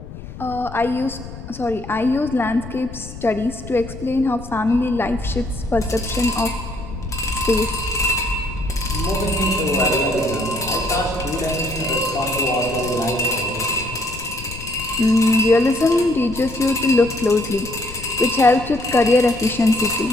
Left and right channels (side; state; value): left; noise; rumble, 13 dB below the sound